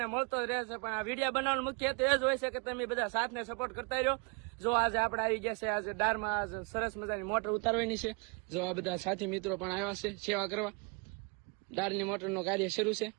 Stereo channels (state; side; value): quieter; left; 32.0 dB